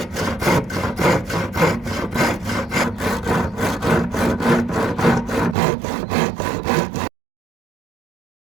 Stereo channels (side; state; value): left; drops out; at 5.6 s